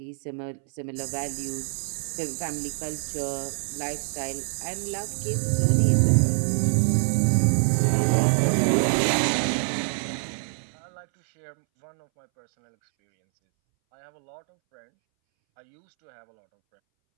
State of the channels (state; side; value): silent; left; 61 dB below the other